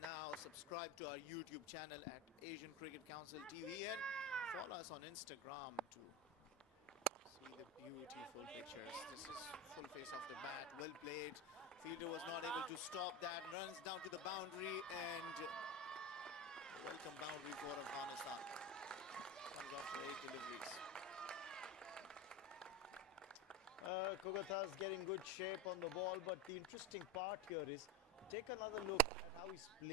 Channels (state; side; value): normal; both; correlation 0.22